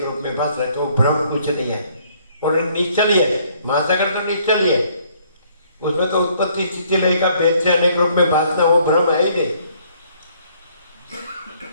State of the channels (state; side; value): inverted; both; correlation -0.64